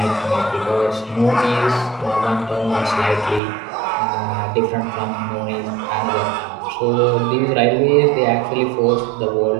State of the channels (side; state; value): left; drops out; at 3.4 s